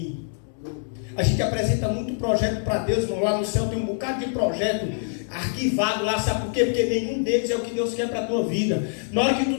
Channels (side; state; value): right; silent; 62 dB below the other